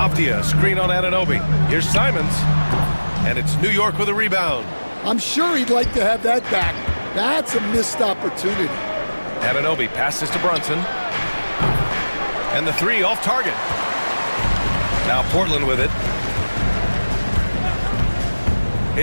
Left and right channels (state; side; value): inverted; both; correlation -1.00